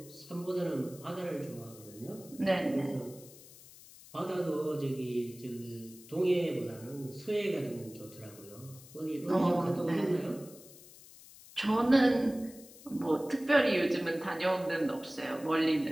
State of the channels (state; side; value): noise; left; hiss, 20 dB below the sound